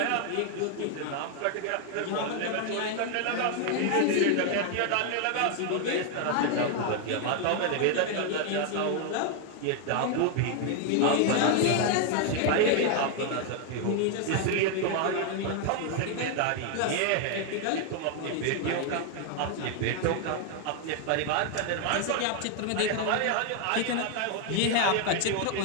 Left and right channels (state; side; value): different; both; correlation 0.00